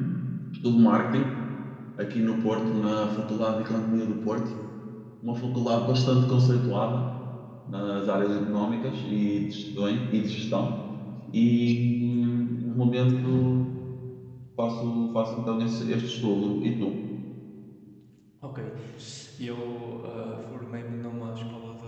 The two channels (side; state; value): both; identical; correlation 1.00